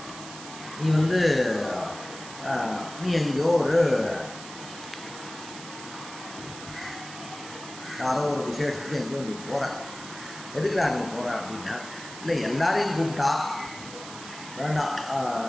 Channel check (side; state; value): right; noise; hiss, 13 dB below the sound